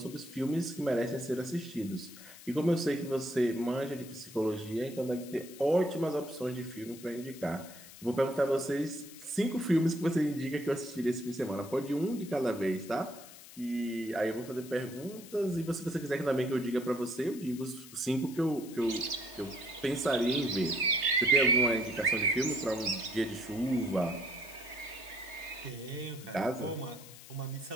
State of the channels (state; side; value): noise; left; hiss, 17 dB below the sound